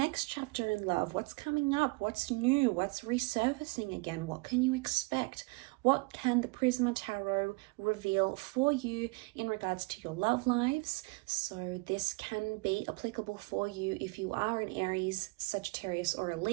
chapter in love. What's coming up? What's new? What's resurfacing again? What can you expect? What can the Prisma Tarot reveal for you in regards to your love lives? So this can be applicable for you if you are an Aries, Sagittarius, or a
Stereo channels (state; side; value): quieter; left; 27.6 dB